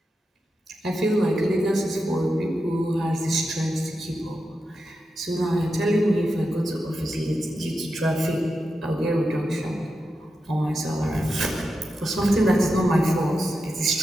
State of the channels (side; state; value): both; normal; correlation 0.89